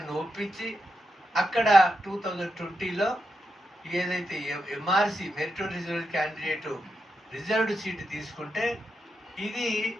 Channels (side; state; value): both; normal; correlation 0.86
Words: ఒప్పించి అక్కడ 2020లో ఏదైతే MRC meritorious candidate reserved seat తీసుకుంటే ఇది